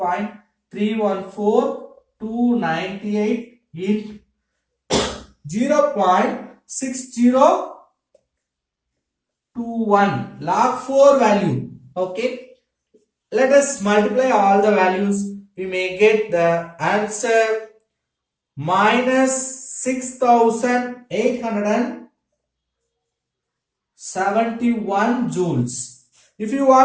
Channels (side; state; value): both; identical; correlation 1.00